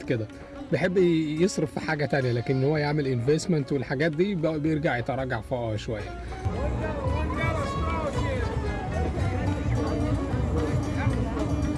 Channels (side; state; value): both; identical; correlation 1.00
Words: كده بيحب يصرف في حاجة تانية، لكن هو يعمل انفستمنت والحاجات دي بيرجع يتراجع فوقها شوية.